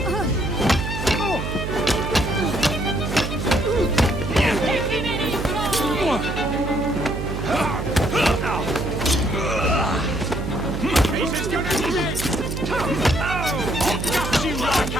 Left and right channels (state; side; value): noise; right; hum, 4 dB below the sound